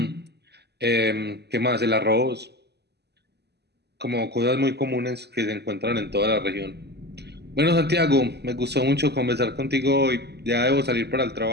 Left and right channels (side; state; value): left; late; 0.49 ms